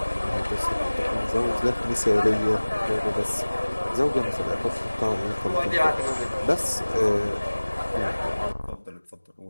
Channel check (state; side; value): inverted; both; correlation -1.00